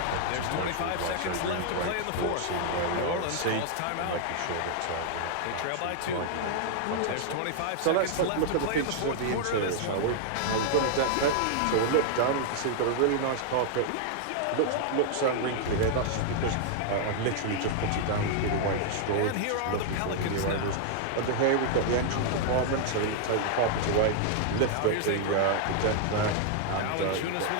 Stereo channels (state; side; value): different; both; correlation 0.00